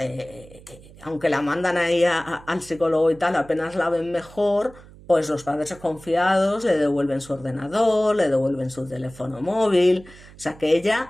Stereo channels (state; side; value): noise; right; hum, 21 dB below the sound